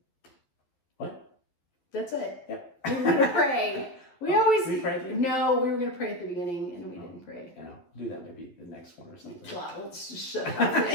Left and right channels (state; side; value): late; right; 11 ms